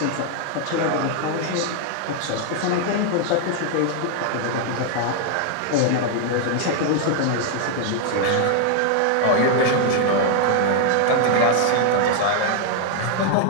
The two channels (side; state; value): both; different; correlation 0.00